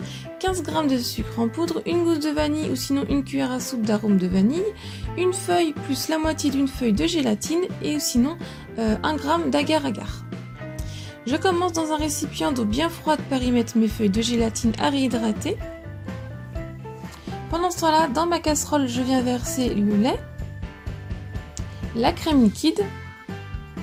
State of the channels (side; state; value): both; identical; correlation 1.00